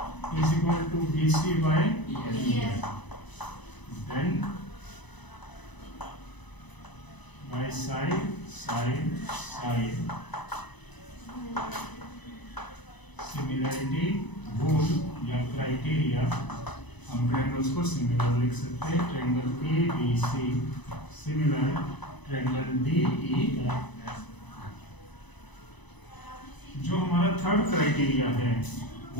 is equal to BC by EF, then by side similarity rule या क्राइटेरिया हम ट्रायंगल्स को सिमिलर लिख सकते हैं। Triangle ABC similar triangle DE। जो हमारा थर्ड क्राइटेरिया है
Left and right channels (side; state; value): right; late; 1.0 ms